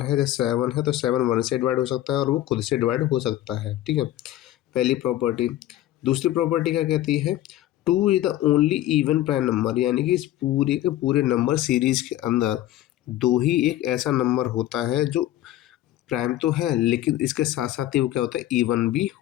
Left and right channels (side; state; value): right; quieter; 13.9 dB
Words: है, जैसे 7 है तो 7 1 से डिवाइड हो सकता है और वो खुद से डिवाइड हो सकता है। ठीक है, पहली प्रॉपर्टी। दूसरी प्रॉपर्टी क्या कहती है, 2 is the only even prime number, यानी कि इस पूरे के पूरे नंबर सीरीज के अंदर 2 ही एक ऐसा नंबर होता है जो प्राइम तो है लेकिन इसके साथ साथ ही वो क्या होता है, इवन भी